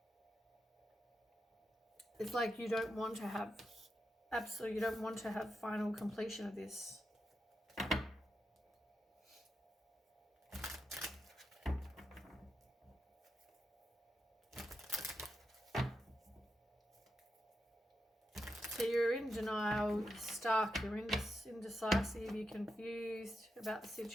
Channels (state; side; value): normal; both; correlation 0.87